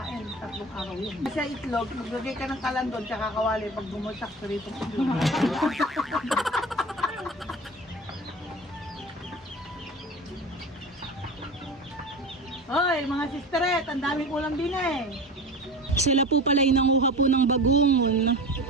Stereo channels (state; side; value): normal; both; correlation 0.33